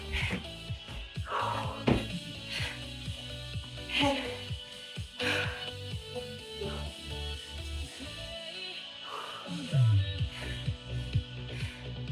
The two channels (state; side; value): identical; both; correlation 1.00